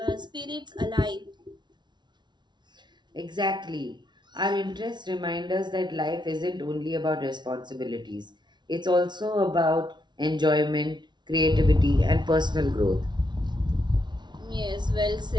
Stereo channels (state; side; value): late; left; 0.21 ms